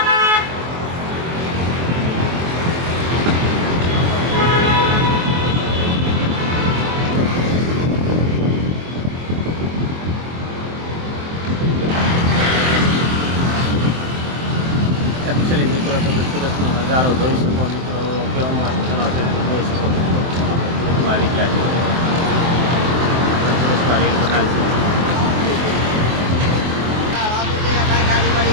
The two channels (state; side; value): late; left; 23 ms